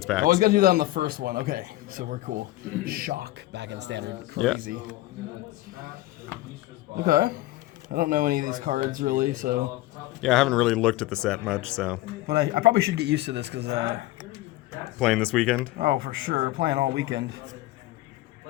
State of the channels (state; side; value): quieter; right; 17.3 dB